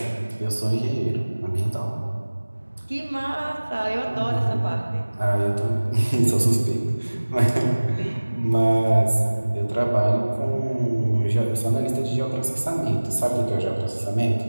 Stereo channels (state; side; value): inverted; both; correlation -1.00